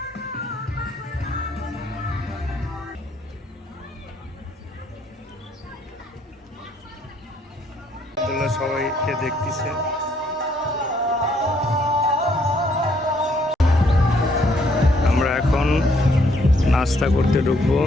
সবাইকে দেখতেছে। আমরা এখন নাস্তা করতে ঢুকবো।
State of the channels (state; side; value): normal; both; correlation 0.68